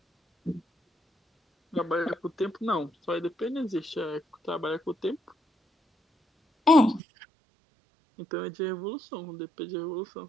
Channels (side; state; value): left; drops out; at 7.0 s